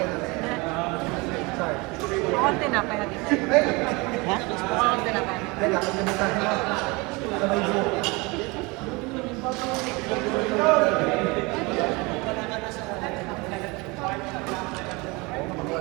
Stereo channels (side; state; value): left; quieter; 25.9 dB